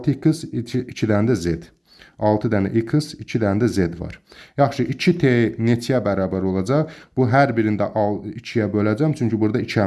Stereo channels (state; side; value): identical; both; correlation 1.00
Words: 2 dənə də z. 6 dənə x, 2 dənə də z var. Yaxşı, 2t neçəyə bərabər olacaq? Bu hər birində 2-yə böləcəm, çünki burada 2